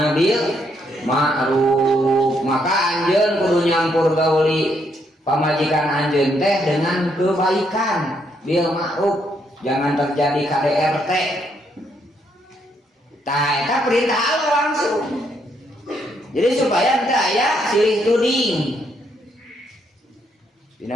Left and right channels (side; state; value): both; normal; correlation 0.74